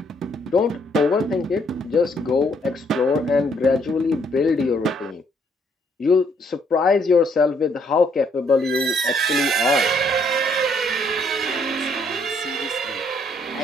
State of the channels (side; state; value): both; normal; correlation 0.68